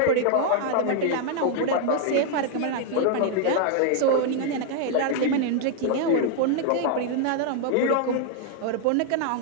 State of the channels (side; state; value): both; different; correlation 0.00